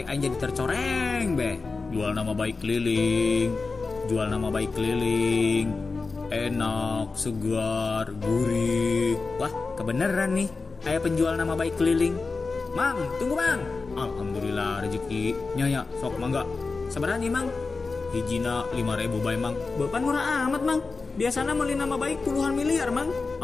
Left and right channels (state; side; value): quieter; right; 4.1 dB